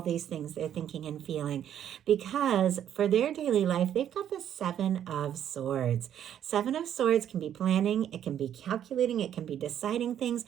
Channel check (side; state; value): left; quieter; 10.1 dB